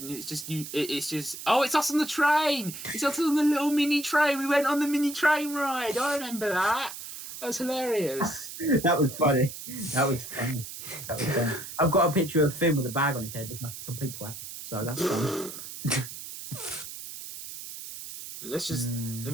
it's just you. It's just it's us on the train. It's us on the little mini train. We went on the mini train ride. I remember that. That was hilarious. That was funny. I've got a picture of Finn with a bag on his head. It's like a complete twat. So that's funny.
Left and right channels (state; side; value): noise; right; hiss, 10 dB below the sound